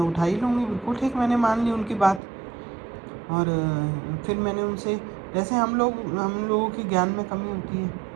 उठा ही लूँगी। बिल्कुल ठीक, मैंने मान ली उनकी बात। और फिर मैंने उनसे, जैसे हम लोगों की ज्ञान में कमी होती है,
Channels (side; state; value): left; drops out; at 2.2 s